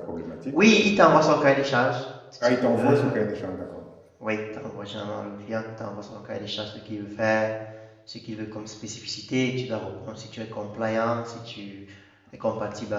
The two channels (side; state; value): both; identical; correlation 1.00